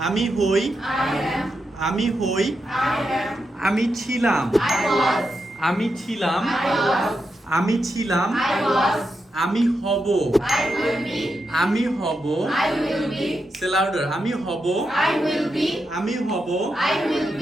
hoi. I am. Ami hoi. I am. Ami ছিলাম. I was. আমি ছিলাম. I was. আমি ছিলাম. I was. আমি হব. I will be. আমি হব. I will be. Say louder. আমি হব. I will be. আমি হব. I will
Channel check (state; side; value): normal; both; correlation 0.86